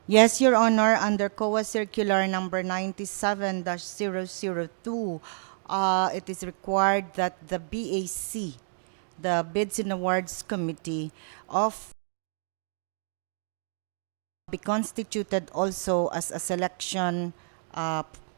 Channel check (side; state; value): left; silent; digital silence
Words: Yes, Your Honor, under COA Circular number 97-002, it is required that the BAC, the Bids and Awards Committee, be constituted also as a selection